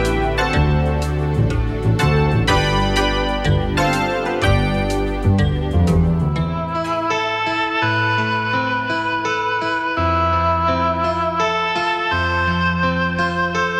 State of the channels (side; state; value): both; identical; correlation 1.00